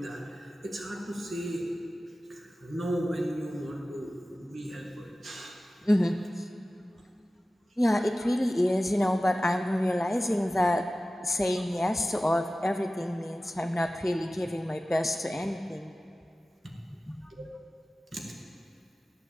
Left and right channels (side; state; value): both; normal; correlation 0.96